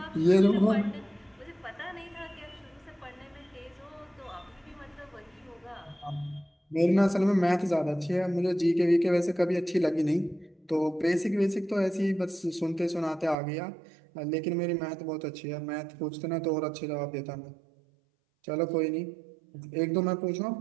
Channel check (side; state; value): left; drops out; at 13.4 s